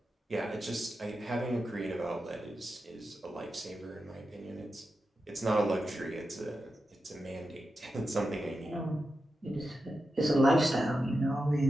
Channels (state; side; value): normal; both; correlation 0.90